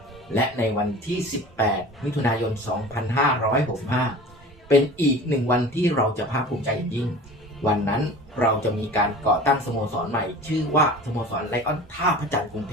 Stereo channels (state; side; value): normal; both; correlation 0.39